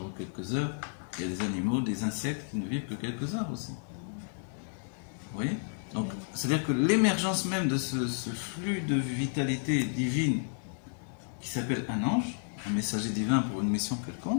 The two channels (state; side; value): silent; right; digital silence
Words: quelques heures. Il y a des animaux, des insectes qui ne vivent que quelques heures aussi. Vous voyez? Donc, c'est-à-dire que l'émergence même de ce flux de vitalité divine qui s'appelle un ange, un messager divin pour une mission